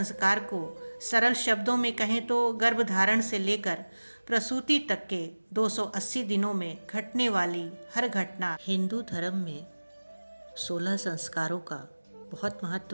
को सरल शब्दों में कहें तो गर्भधारण से लेकर प्रसूति तक के 280 दिनों में घटने वाली हर घटना। हिंदू धर्म में 16 संस्कारों का बहुत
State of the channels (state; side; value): inverted; both; correlation -1.00